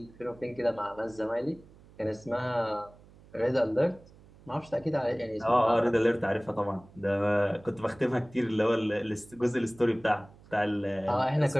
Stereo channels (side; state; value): right; noise; hum, 24 dB below the sound